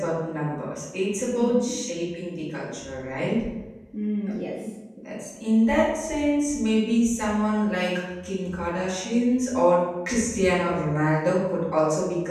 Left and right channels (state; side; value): identical; both; correlation 1.00